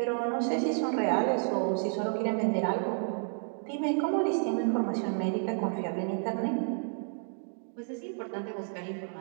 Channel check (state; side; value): silent; left; 57 dB below the other